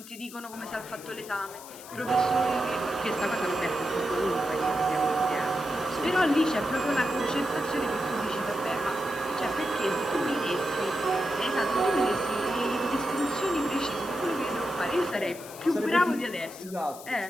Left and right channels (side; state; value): left; noise; hiss, 16 dB below the sound